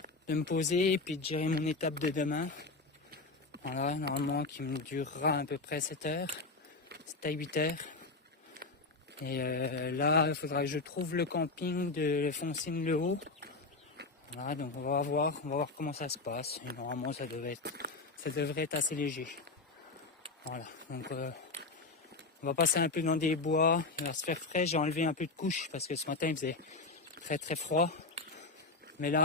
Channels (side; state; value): right; quieter; 3.7 dB